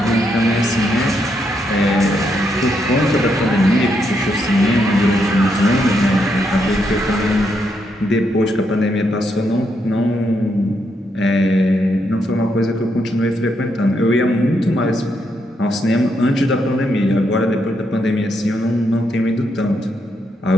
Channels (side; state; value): both; normal; correlation 0.79